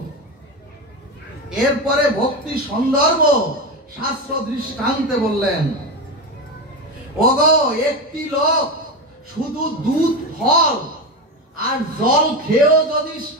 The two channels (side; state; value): both; normal; correlation 0.18